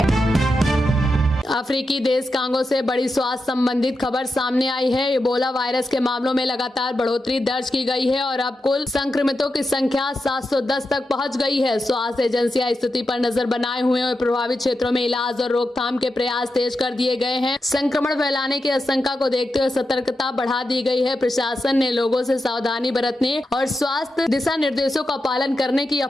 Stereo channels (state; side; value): normal; both; correlation 0.88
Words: अफ्रीकी देश कांगो से बड़ी स्वास्थ्य संबंधित खबर सामने आई है। इबोला वायरस के मामलों में लगातार बढ़ोतरी दर्ज की गई है और अब कुल संक्रमितों की संख्या 710 तक पहुंच गई है। स्वास्थ्य एजेंसियां स्थिति पर नजर बनाए हुए और प्रभावित क्षेत्रों में इलाज और रोकथाम के प्रयास तेज कर दिए गए हैं। संक्रमण फैलाने की आशंका को देखते हुए सतर्कता बढ़ा दी गई है। प्रशासन ने लोगों से सावधानी बरतने और स्वास्थ्य दिशा निर्देशों का पालन करने की